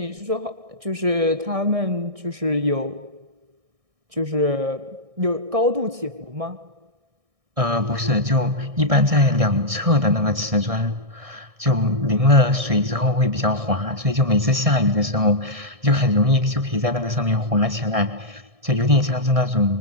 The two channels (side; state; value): left; late; 1.6 ms